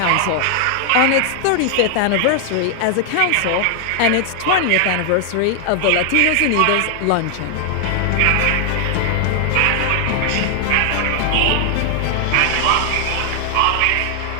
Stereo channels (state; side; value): different; both; correlation 0.00